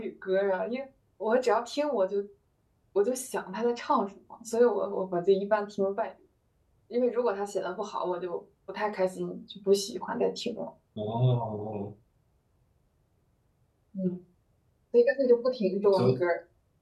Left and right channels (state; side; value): identical; both; correlation 1.00